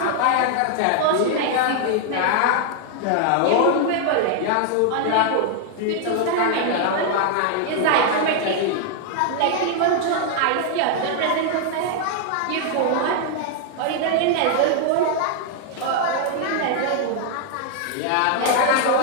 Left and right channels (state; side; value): different; both; correlation 0.00